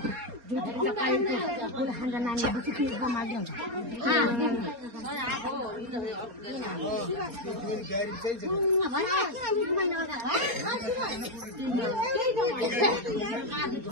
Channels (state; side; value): late; left; 4.3 ms